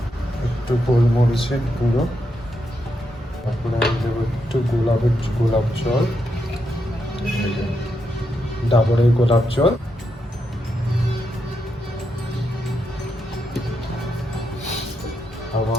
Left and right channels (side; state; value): both; normal; correlation 0.82